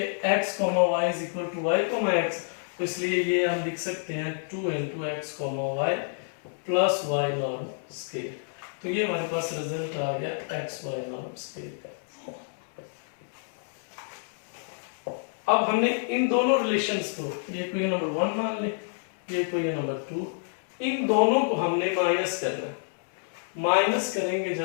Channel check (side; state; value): right; silent; 59 dB below the other